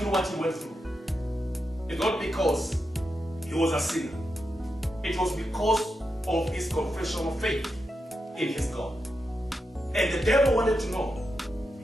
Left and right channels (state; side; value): normal; both; correlation 0.87